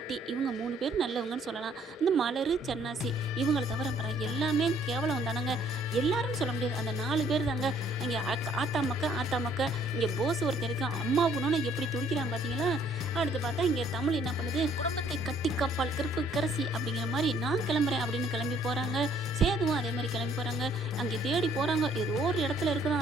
இவங்க 3 பேர் நல்லவங்கன்னு சொல்லலாம். இந்த மலர், சன்னாசி இவங்களை தவிர எல்லாமே கேவலம் தானங்க. எல்லாரும் சொல்ல முடியாது, அந்த 4 பேர் தாங்க. இங்கே ஆத்தா மக்கா இங்கே போஸ் ஒருத்தர் இருக்கான். அம்மா குணம்னு எப்படி துடிக்கிறான் பார்த்தீங்களா. அடுத்து பார்த்தா இங்கே தமிழ் என்ன பண்ணுது, குடும்பத்தை கட்டி காப்பால் கருப்பு கரசி அப்படிங்கிற மாதிரி நான் கிளம்புறேன் அப்படின்னு கிளம்பி போகிறாங்க. சேதுவும் அதே மாதிரி கிளம்பி போகிறாங்க. அங்கே தேடி போகிறாங்க. ஏதோ ஒரு இடத்துல இருக்குதான்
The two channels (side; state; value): both; normal; correlation 0.63